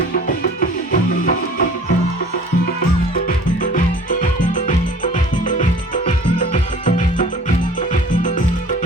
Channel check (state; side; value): normal; both; correlation 0.47